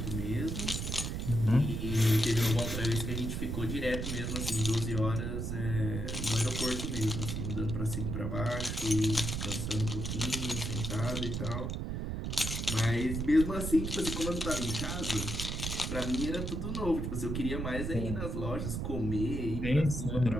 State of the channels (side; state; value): right; noise; rumble, 3 dB below the sound